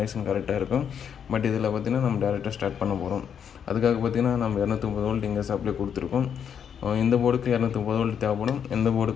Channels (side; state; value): right; quieter; 8.0 dB